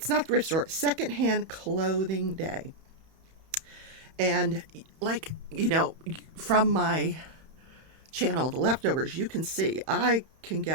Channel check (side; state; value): left; late; 31 ms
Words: not thrift store, Secondhand Clothing Day. And from my channel, The Leftovers, you can see I can